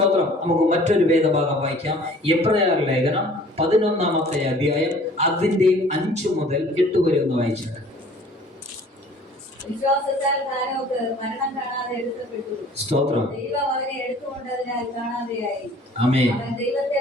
നമുക്ക് മറ്റൊരു വേദഭാഗം വായിക്കാം. എബ്രായർ ലേഖനം 11-ാമത്തെ അധ്യായം അതിന്റെ 5 മുതൽ 8 വരെ ഒന്ന് വായിച്ചിട്ട്. വിശ്വാസത്താൽ ഹാനോക്ക് മരണം കാണാതെ എടുക്കപ്പെട്ടു. സ്തോത്രം. ദൈവം അവനെ എടുത്തുകൊണ്ടതിനാൽ കാണാതെയായി. ആമേൻ. അവൻ ദൈവത്തെ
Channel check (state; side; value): normal; both; correlation 0.51